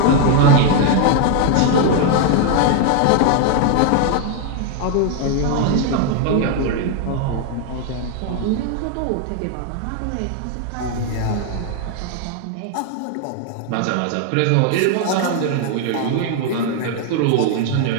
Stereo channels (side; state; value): both; different; correlation 0.01